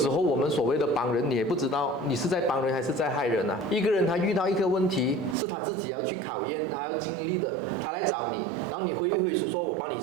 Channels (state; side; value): drops out; left; at 5.4 s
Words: 候我们所谓的帮人，你也不知道你是在帮人还是在害人啊。一个人他遇到一个问题，是他自己要去考验，他要经历的，他来找你，然后你挥一挥手说我帮你